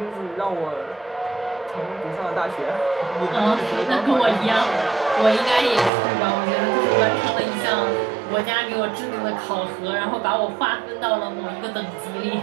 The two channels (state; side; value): drops out; left; at 5.9 s